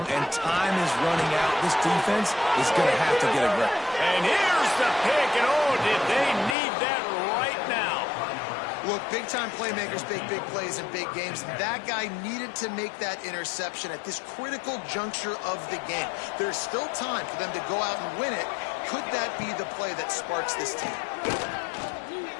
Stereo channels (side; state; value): right; drops out; at 6.6 s